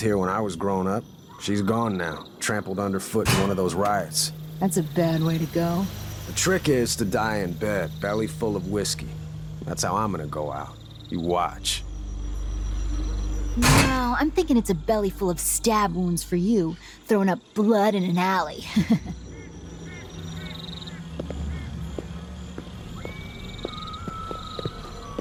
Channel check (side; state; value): both; identical; correlation 1.00